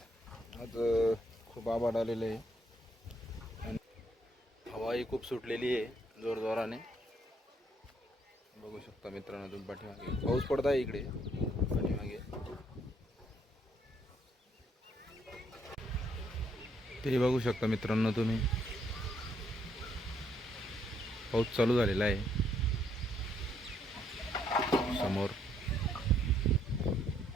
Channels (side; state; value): both; normal; correlation 0.71